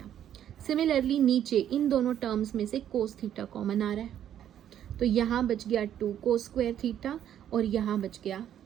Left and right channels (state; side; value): quieter; left; 10.4 dB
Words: सिमिलरली नीचे इन दोनों टर्म्स में से कोस थीटा कॉमन आ रहा है, तो यहाँ बच गया 2 कोस स्क्वायर थीटा और यहाँ बच गया